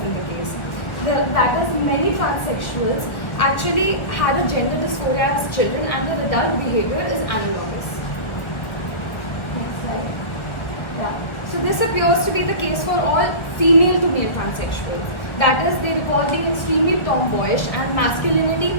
the case. That is, many transsexuals actually had a gender dysphoria as children, and their adult behavior is analogous. Next slide. Yeah. So this appears to be the case for all female to male transsexuals. That is, they recall being extremely tomboyish and masculinity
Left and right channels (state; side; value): late; right; 1.4 ms